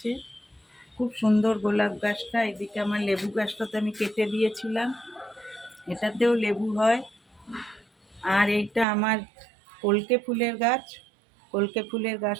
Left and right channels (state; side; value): drops out; left; at 8.8 s